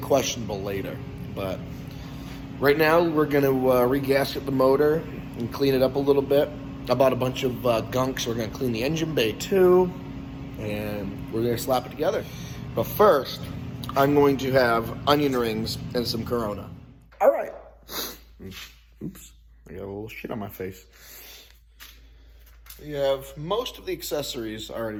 later, but right now we're gonna re-gasket the motor and clean it up a little bit. I bought a bunch of gunk, so we're gonna clean the engine bay too, and we're gonna slap it together. But first, I'm going to have onion rings and some Corona. All right. Oops, I got a little shit on my face. We have most of the accessories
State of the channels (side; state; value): both; identical; correlation 1.00